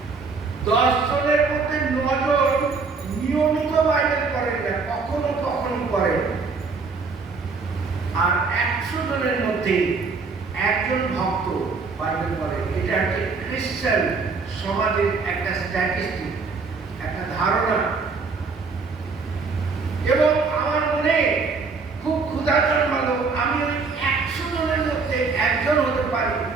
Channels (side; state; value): left; quieter; 4.5 dB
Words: 10 জনের মধ্যে 9 জন নিয়মিত বাইবেল পড়েন না, কখনো কখনো পড়েন। আর 100 জনের মধ্যে একজন ভক্ত বাইবেল পড়েন। এটা একটা খ্রিস্টান সমাজের একটা স্ট্যাটিস্টিক, একটা ধারণা। এবং আমার মনে খুব ক্ষুধা জন্মালো, আমি ওই 100 জনের মধ্যে একজন